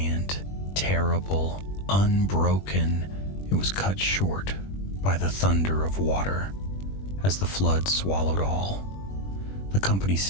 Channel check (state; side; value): late; right; 21 ms